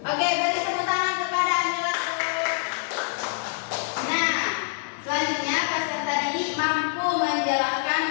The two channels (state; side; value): silent; right; digital silence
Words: Oke, beri tepuk tangan kepada Anila. Nah, selanjutnya peserta didik mampu menjelaskan